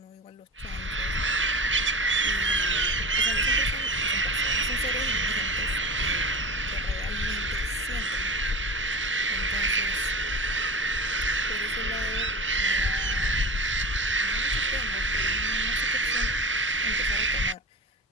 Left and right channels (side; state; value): both; normal; correlation 0.32